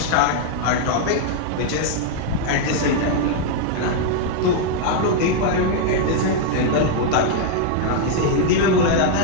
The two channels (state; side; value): different; both; correlation 0.00